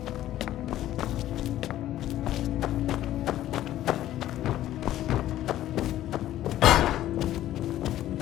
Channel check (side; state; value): right; quieter; 13.3 dB